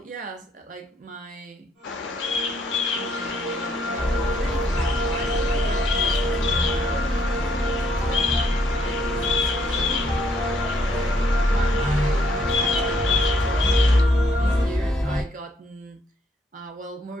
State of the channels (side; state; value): both; normal; correlation 0.70